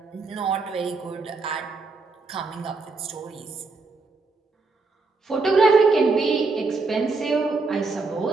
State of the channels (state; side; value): quieter; left; 4.0 dB